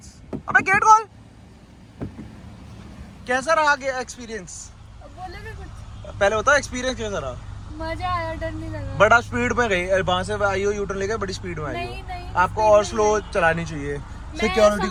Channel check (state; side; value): identical; both; correlation 1.00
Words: अबे गेट खोल, कैसा रहा एक्सपीरियंस? बोलेगा कुछ? पहले बताओ एक्सपीरियंस कैसा रहा? मजा आया, डर नहीं लगा। बड़ा स्पीड में गई, वहां से आई हो यूटर्न लेके बड़ी स्पीड में आई नहीं, हो। नहीं, आपको और स्लो चलानी चाहिए, सिक्योरिटी